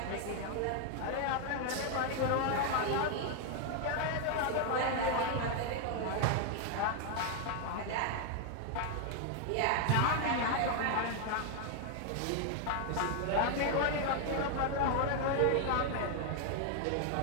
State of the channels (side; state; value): both; different; correlation 0.00